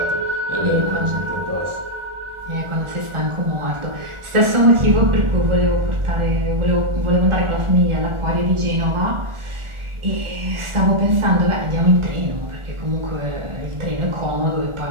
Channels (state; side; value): late; left; 1.4 ms